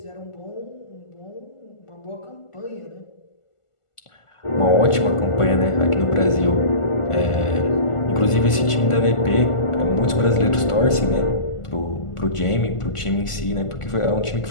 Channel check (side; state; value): right; late; 1.5 ms